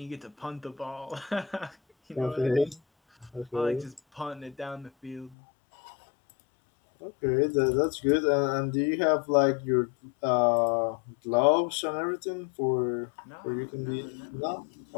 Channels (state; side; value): drops out; right; at 5.4 s